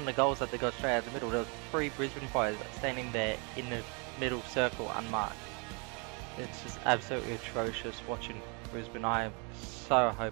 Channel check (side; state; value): left; quieter; 33.5 dB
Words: of the goals that they got straight out of the middle, there was 3 Brisbane players standing there in the middle circle unmarked. It's just absolutely atrocious watching Brisbane. I am so